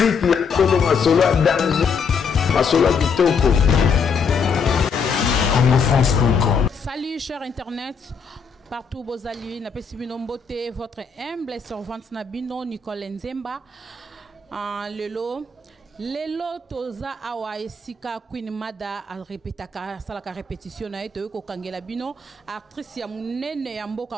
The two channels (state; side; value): quieter; right; 5.3 dB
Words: ya tolo masolo danger. Salut chers internet, partout vos alliés, n'a pas si beauté, votre humble servante Nabino Nicole Nzemba, Lelo toza awa esika Queen Mada a répétaka salaka répétition na eto ko kangela bino actrice ya munene ya